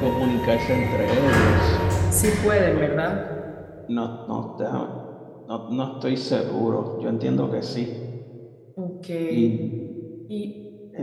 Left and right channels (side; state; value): both; identical; correlation 1.00